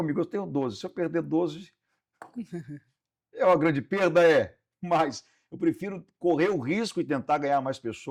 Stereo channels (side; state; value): both; identical; correlation 1.00